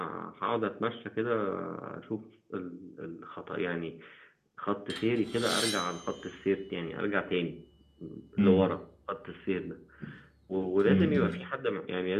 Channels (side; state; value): both; identical; correlation 1.00